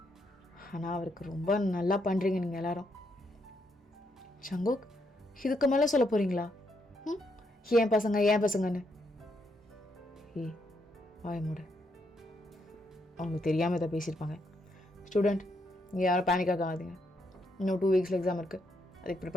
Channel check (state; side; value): normal; both; correlation 0.77